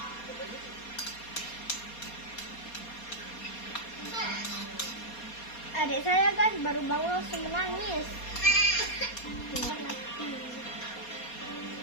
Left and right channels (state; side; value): late; right; 4.2 ms